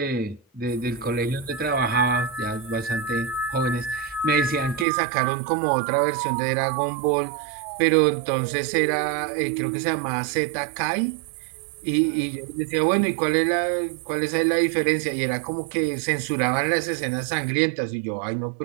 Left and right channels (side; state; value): left; drops out; at 4.9 s